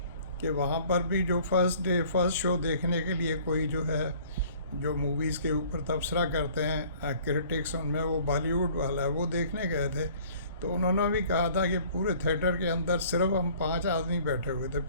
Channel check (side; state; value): both; inverted; correlation -0.53